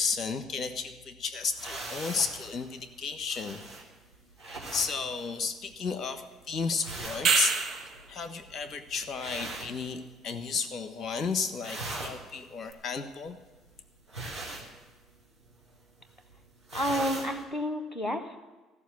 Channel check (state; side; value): normal; both; correlation 0.59